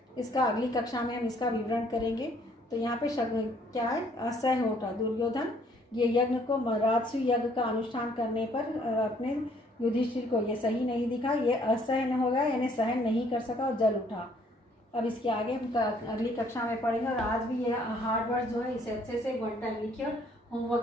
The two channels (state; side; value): normal; both; correlation 0.63